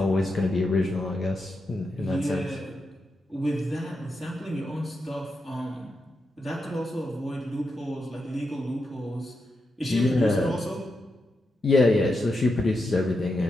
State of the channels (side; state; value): both; normal; correlation 0.86